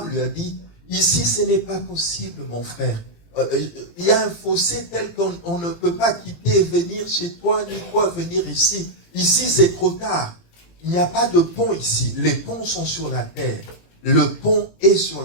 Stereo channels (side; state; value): right; late; 18 ms